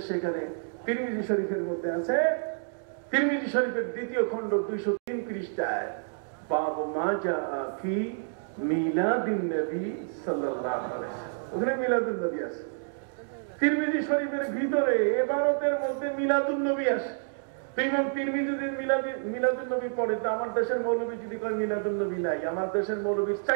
সেখানে তিরমিজি শরীফের মধ্যে আছে, তিরমিজি শরীফের 2য় খণ্ড 203 পৃষ্ঠায় বাব মা জাআ ফি মিলাদিন নবী সাল্লাল্লাহু আলাইহি ওয়াসাল্লাম, ওখানে মিলাদুন নবী আছে। তিরমিজি শরীফের ভিতরে ইবারতের মধ্যে মিলাদুন নবী আছে। ইমাম তিরমিজি যদি মিলাদুন নবী পড়ে, তো আমার দেশের মৌলবী যদি কয় মিলাদুন নবী নাই, আমার দেশের মৌলবীর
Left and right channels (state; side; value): silent; left; digital silence